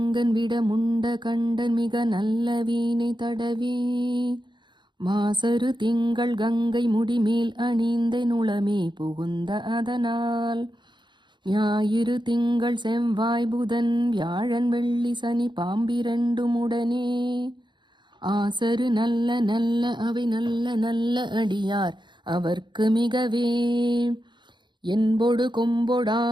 விட முண்ட கண்டன் மிக நல்ல வீணை தடவி மாசரு திங்கள் கங்கை முடிமேல் அணிந்த நுளமே புகுந்த அதனால் ஞாயிறு திங்கள் செவ்வாய் புதன் வியாழன் வெள்ளி சனி பாம்பிரண்டும் உடனே ஆசரு நல்ல நல்ல அவை நல்ல நல்ல அடியார் அவர்க்கு மிகவே என்பொடு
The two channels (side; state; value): left; late; 0.22 ms